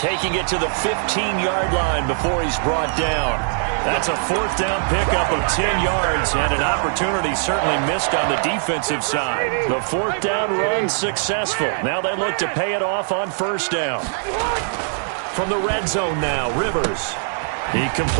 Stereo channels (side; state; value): left; silent; digital silence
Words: it to the 15-yard line before he's brought down. That's a 4th down pickup of 10 yards and an opportunity certainly missed on the defensive side. The 4th down run successful. Now they look to pay it off on 1st down. From the red zone now, Rivers. He